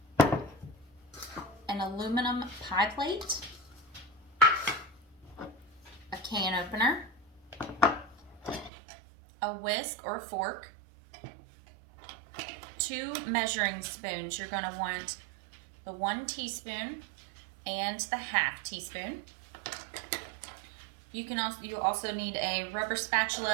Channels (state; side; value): drops out; left; at 8.7 s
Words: an aluminum pie plate, a can opener, a whisk or fork, 2 measuring spoons. You're going to want the 1 teaspoon and the 1/2 teaspoon. You also need a rubber